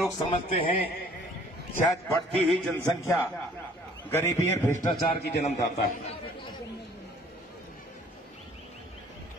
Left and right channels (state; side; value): normal; both; correlation 0.56